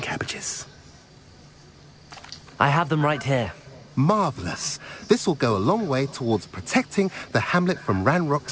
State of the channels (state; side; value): identical; both; correlation 1.00